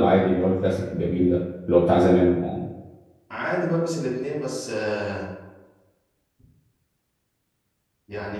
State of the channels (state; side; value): identical; both; correlation 1.00